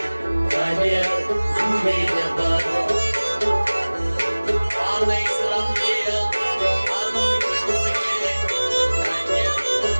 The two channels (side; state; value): both; inverted; correlation -1.00